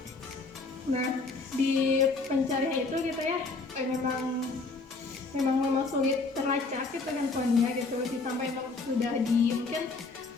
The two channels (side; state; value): right; quieter; 3.9 dB